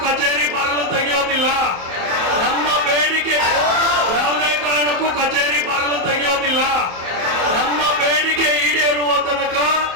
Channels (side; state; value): left; late; 27 ms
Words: ಕಚೇರಿ ಬಾಗಿಲು ತೆಗೆಯೋದಿಲ್ಲ. ನಮ್ಮ ಬೇಡಿಕೆ ಯಾವುದೇ ಕಾರಣಕ್ಕೂ ಕಚೇರಿ ಬಾಗಿಲು ತೆಗೆಯೋದಿಲ್ಲ. ನಮ್ಮ ಬೇಡಿಕೆ ಈಡೇರುವ ತನಕ